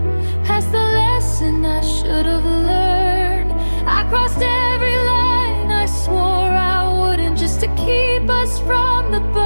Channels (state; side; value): inverted; both; correlation -1.00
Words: past the lesson I should have learned. I crossed every line I swore I wouldn't, just to keep us from the